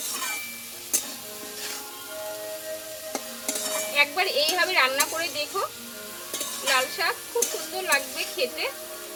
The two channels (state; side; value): identical; both; correlation 1.00